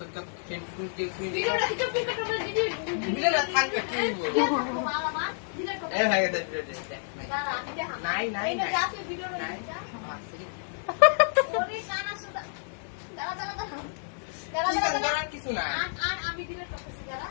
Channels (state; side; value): silent; right; digital silence